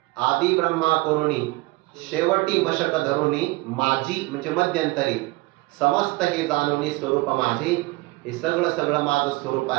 आदी ब्रह्मा करुणी शेवटी मशक धरुणी माझी म्हणजे मध्यंतरी समस्त हे जाणुनी स्वरूप माझे. हे सगळं सगळं माझं स्वरूप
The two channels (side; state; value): left; quieter; 22.3 dB